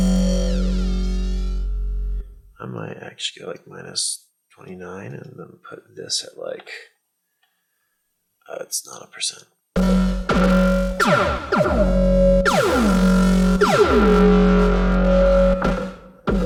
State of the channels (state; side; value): identical; both; correlation 1.00